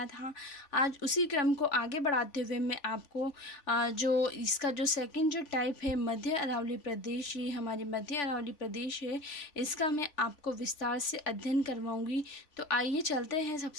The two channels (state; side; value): late; right; 3.4 ms